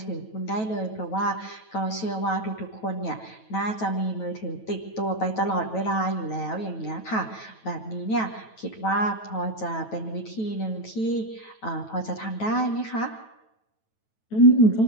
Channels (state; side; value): late; right; 9.2 ms